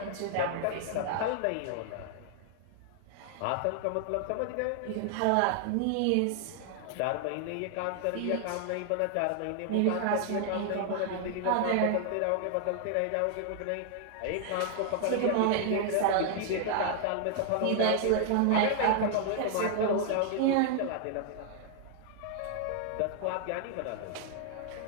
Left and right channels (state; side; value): different; both; correlation 0.00